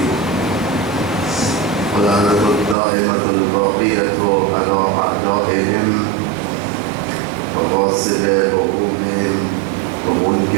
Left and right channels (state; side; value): drops out; left; at 2.8 s